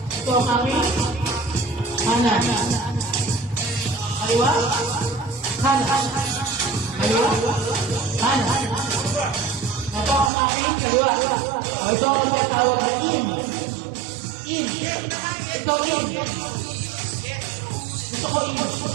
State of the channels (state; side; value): drops out; left; at 10.3 s